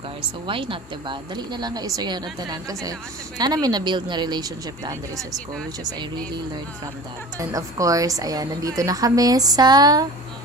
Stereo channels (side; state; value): both; normal; correlation 0.38